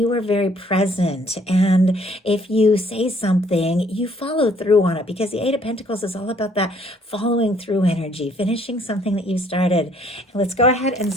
are very present. And if you say something, you follow through on it, because the Eight of Pentacles is all about that following through energy, finishing something that you started. And let's go ahead and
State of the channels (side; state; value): both; normal; correlation 0.62